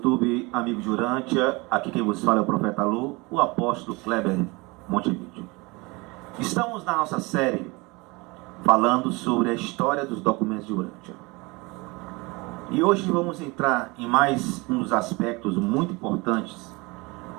amigos de Urântia. Aqui quem vos fala é o Profeta Lu, o apóstolo Kleber Montevideo. Estamos na nossa série falando sobre a história dos documentos de Urântia. E hoje vamos entrar em mais um dos aspectos muito importantes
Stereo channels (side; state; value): left; quieter; 25.4 dB